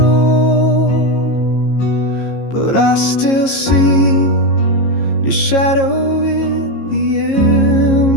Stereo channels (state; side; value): late; right; 15 ms